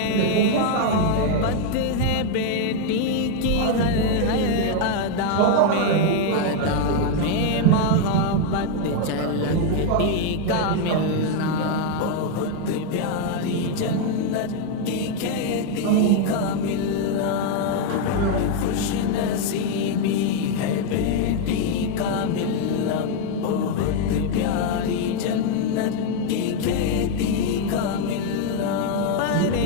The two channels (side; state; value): both; different; correlation 0.00